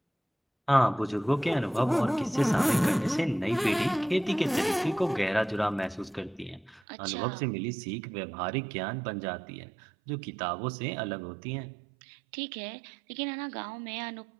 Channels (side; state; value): left; drops out; at 6.8 s